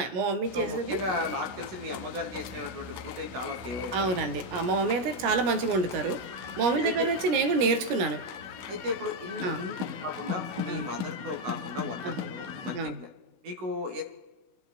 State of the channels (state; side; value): late; left; 16 ms